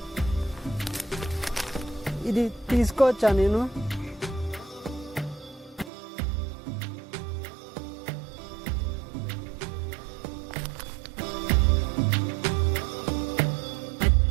ఇది తీసుకోవచ్చా నేను?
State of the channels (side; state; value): left; drops out; at 5.9 s